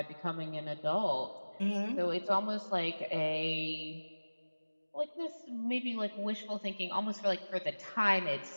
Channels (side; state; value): both; inverted; correlation -1.00